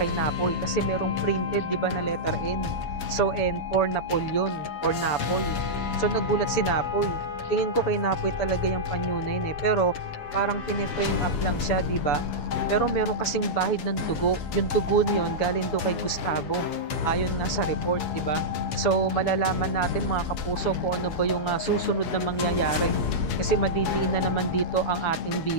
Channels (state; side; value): late; right; 7.0 ms